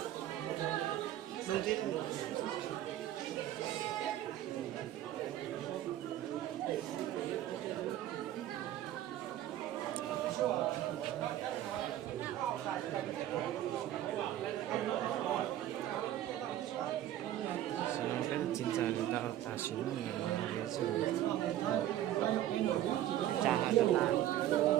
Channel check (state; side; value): quieter; left; 12.8 dB